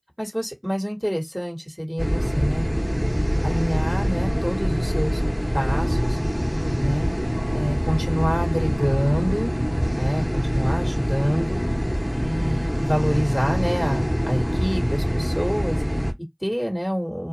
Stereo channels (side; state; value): both; identical; correlation 1.00